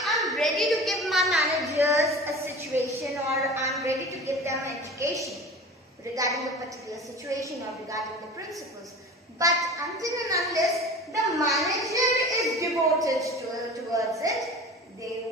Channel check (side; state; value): both; normal; correlation 0.37